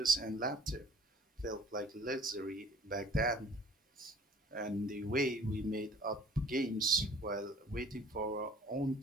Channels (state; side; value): normal; both; correlation 0.51